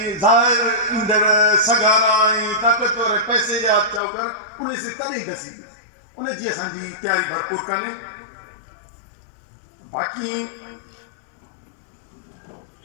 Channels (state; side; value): drops out; right; at 4.0 s